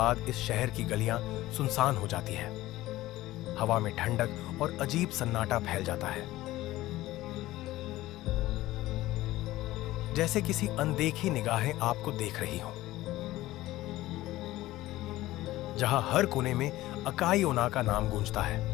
इस शहर की गलियां सुनसान हो जाती है। हवा में ठंडक और अजीब सन्नाटा फैल जाता है, जैसे किसी अनदेखी निगाहें आपको देख रही हों। जहां हर कोने में अकाई ओना का नाम गूंजता है।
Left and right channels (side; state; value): right; quieter; 16.7 dB